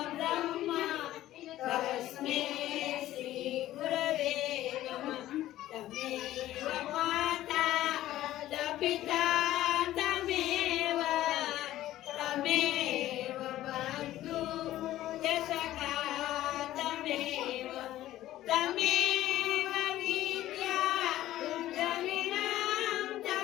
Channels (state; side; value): quieter; right; 14.3 dB